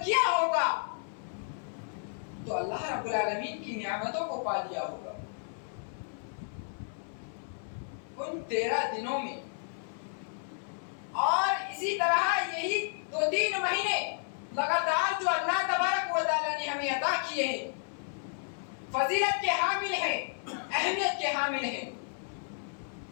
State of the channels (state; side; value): silent; right; 56 dB below the other